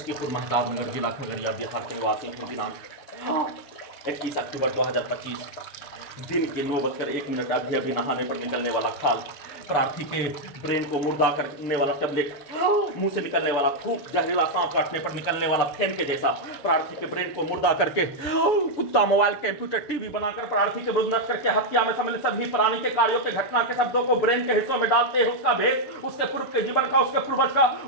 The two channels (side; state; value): right; late; 6.9 ms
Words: महताबनगर जिला खगड़िया बिहार के निवासी हूँ। दिनांक 21 अक्टूबर 2025 दिन के 9:01 अभी अभी नहाने पर निकलने वाला खाल, प्रार्थी के ब्रेन को मुर्दा करने वाला टैबलेट, मुंह से निकलने वाला थूक, जहरीला सांप काटने पर निकलने वाला फेन के जैसा प्रार्थी के ब्रेन को मुर्दा करके कुत्ता, मोबाइल, कंप्यूटर, टीवी बनाकर प्रार्थी के विरुद्ध नष्ट करके हत्या में सम्मिलित सभी प्राणी के कार्यों के घटना के शब्दों को ब्रेन के हिस्सों में डालते हैं, उसका भेष, उसके पूर्व के जीवन का, उसके पूर्वज का,